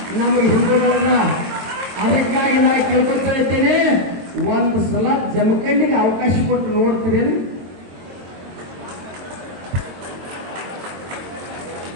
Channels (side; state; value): left; late; 22 ms